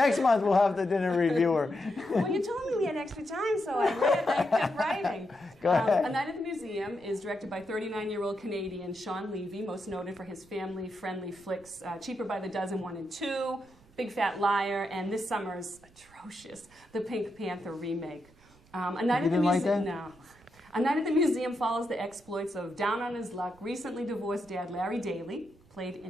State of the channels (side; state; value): right; noise; rumble, 27 dB below the sound